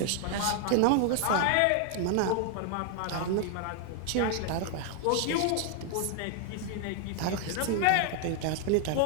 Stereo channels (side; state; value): both; different; correlation 0.00